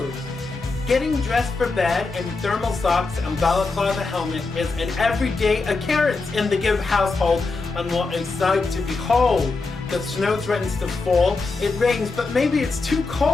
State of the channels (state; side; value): quieter; right; 3.8 dB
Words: Getting dressed for bed in thermal socks and balaclava helmet is an everyday occurrence in the Gibb household, and what a sight to behold. The snow threatens to fall, it rains, but maybe it's too